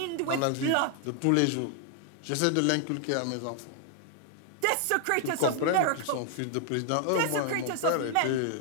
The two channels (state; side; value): different; both; correlation 0.00